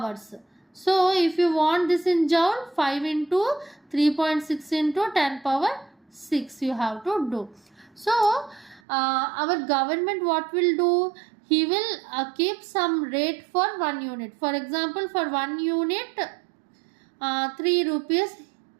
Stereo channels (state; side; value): drops out; left; at 8.8 s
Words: So if you want this in joule, 5 into 3.6 into 10 power 6 you have to do. So our government what will do? He will keep some rate for 1 unit. For example, for 1 unit 3 rupees